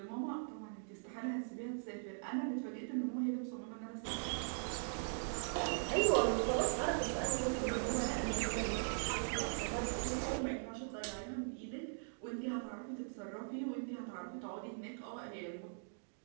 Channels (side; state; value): left; silent; digital silence